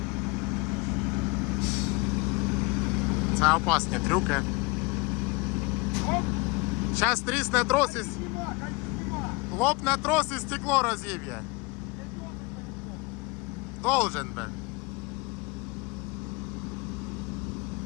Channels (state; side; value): quieter; right; 26.9 dB